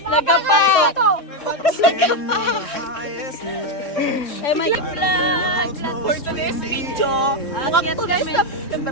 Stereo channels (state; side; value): late; right; 3.2 ms